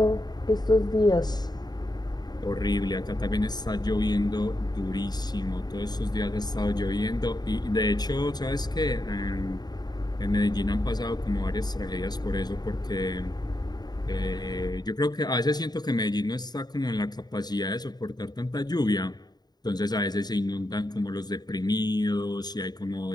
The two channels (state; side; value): late; right; 0.20 ms